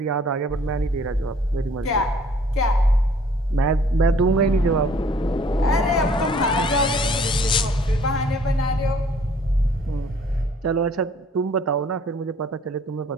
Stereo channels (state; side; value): normal; both; correlation 0.57